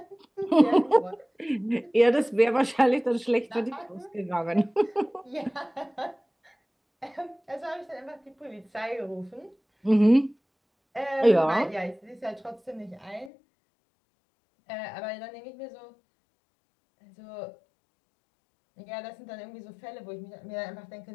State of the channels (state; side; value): drops out; right; at 13.3 s